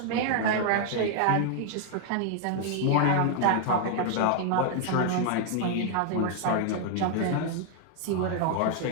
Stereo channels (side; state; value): both; different; correlation 0.00